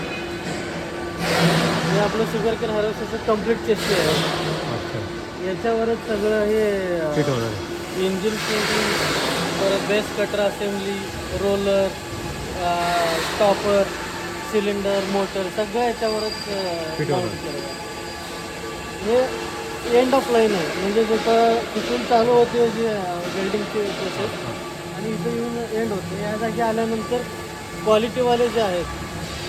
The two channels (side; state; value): both; identical; correlation 1.00